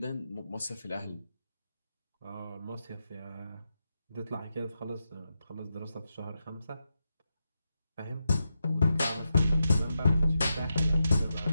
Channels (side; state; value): both; inverted; correlation -0.87